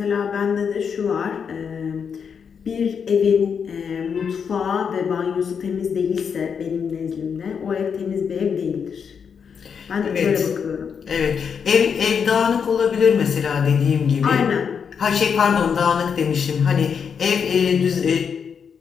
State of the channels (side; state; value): right; quieter; 6.7 dB